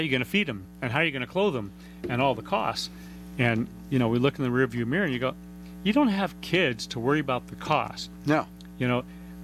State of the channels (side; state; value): both; identical; correlation 1.00